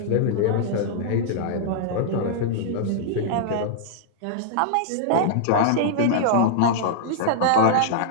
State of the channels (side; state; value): both; different; correlation -0.02